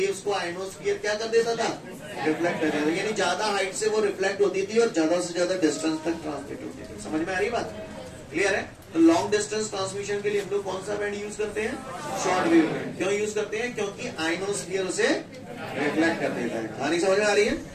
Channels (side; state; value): both; identical; correlation 1.00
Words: को आयनोस्फीयर क्या कर देता था, रिफ्लेक्ट कर देता था। यानी ज्यादा हाइट से वो रिफ्लेक्ट होती थी और ज्यादा से ज्यादा डिस्टेंस तक ट्रांसमिट होती थी। समझ में आ रही बात? क्लियर है? तो लॉन्ग डिस्टेंस ट्रांसमिशन के लिए हम लोग कौन सा बैंड यूज करते हैं? Short wave band. क्यों यूज करते हैं? क्योंकि आयनोस्फीयर उसे रिफ्लेक्ट कर देता है। कहानी समझ में आ रही है?